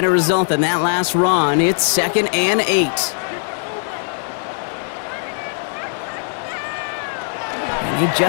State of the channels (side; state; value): right; silent; 56 dB below the other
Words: result than that last run. It's 2nd and 8. And they